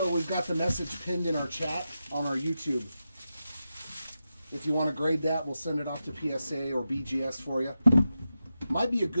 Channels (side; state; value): both; inverted; correlation -0.90